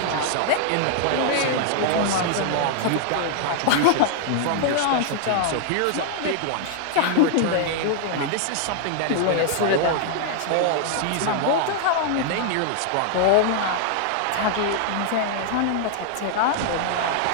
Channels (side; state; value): both; different; correlation -0.01